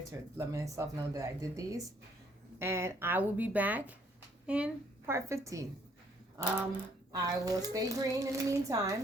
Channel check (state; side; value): normal; both; correlation 0.65